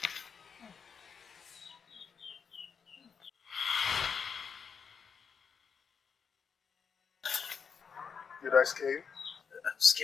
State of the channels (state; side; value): quieter; right; 6.3 dB